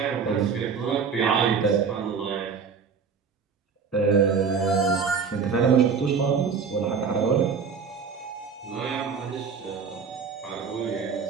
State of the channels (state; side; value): quieter; left; 5.9 dB